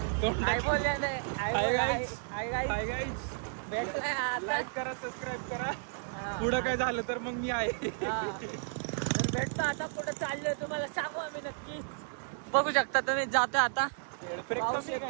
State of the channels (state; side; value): silent; left; digital silence